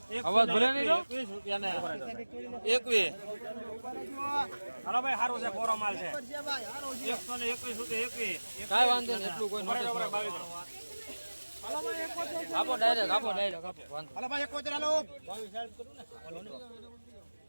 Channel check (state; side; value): inverted; both; correlation -1.00